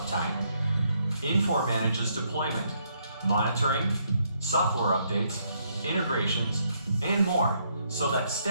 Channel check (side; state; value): both; inverted; correlation -0.73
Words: Infor manages deployment, monitoring, software updates, integrations, and more so that